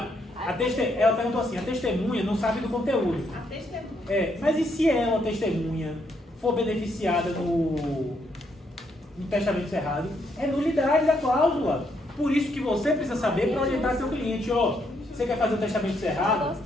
Ela perguntou assim, a testemunha não sabe do conteúdo. A testemunha. Mas e se ela, testemunha, for beneficiada no testamento cerrado? É nulidade da cláusula. Por isso que você precisa saber para orientar seu cliente. Ó, você quer fazer o testamento cerrado?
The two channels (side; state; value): both; normal; correlation 0.74